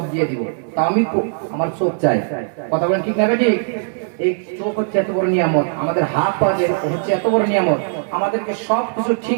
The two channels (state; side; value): silent; left; digital silence